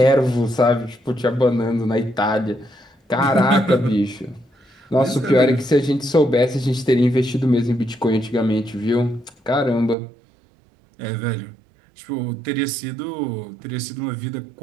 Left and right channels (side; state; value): left; drops out; at 10.0 s